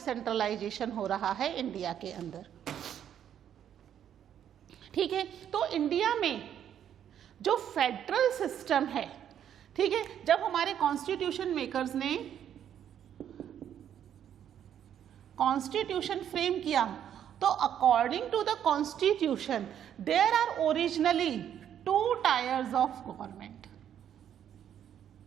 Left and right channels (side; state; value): left; quieter; 9.7 dB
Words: हो रहा है इंडिया के अंदर। ठीक है, तो इंडिया में जो फेडरल सिस्टम है, ठीक है, जब हमारे कॉन्स्टिट्यूशन मेकर्स ने कॉन्स्टिट्यूशन फ्रेम किया तो according to the constitution there are originally 2 tiers of government,